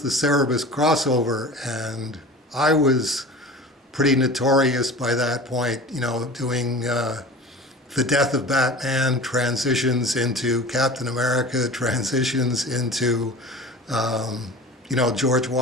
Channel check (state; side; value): normal; both; correlation 0.37